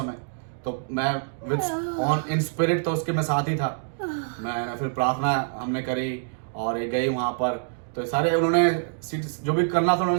तो मैं विद इन स्पिरिट तो उसके मैं साथ ही था। मैं फिर प्रार्थना हमने करी, और ये गई वहां पर, तो सारे उन्होंने जो भी करना था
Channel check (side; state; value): left; silent; digital silence